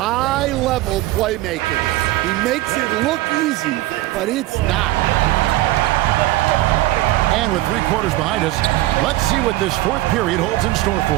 playmaking. He makes it look easy, but it's not. And with 3 quarters behind us, let's see what this fourth period holds in store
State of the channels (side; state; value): left; quieter; 17.2 dB